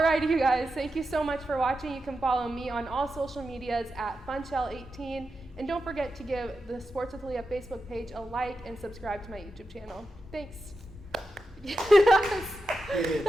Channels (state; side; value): normal; both; correlation 0.89